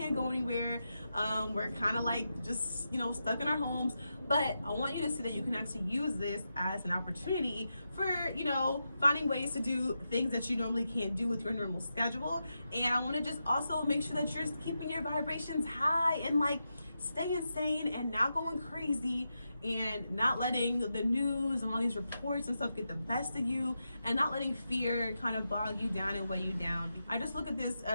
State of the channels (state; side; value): inverted; both; correlation -0.88